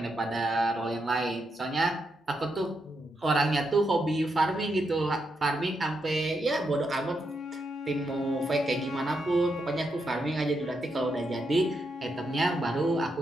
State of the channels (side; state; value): both; normal; correlation 0.82